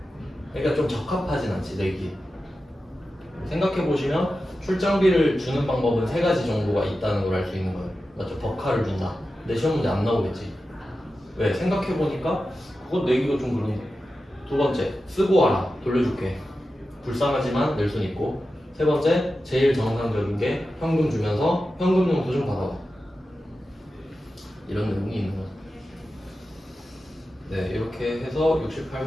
그러니까 좀 적합하진 않지 내기. 생각해 보시면 출장비를 주는 방법은 세 가지 정도가 있다는 걸 알 수 있는 거예요. 맞죠? 버카를 준다. 근데 시험 문제 안 나오겠지. 왜? 생각해 보니까 그거 내기가 좀 그런데. 두 번째, 쓰고 와라. 돌려줄게. 불쌍하지만 낼 순 있고. 세 번째, 제일 정상적인 게 현금 주면서 현금용 도좀 받아와. 이런 내용이 있는 거죠. 네, 이렇게 해서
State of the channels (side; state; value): both; normal; correlation 0.92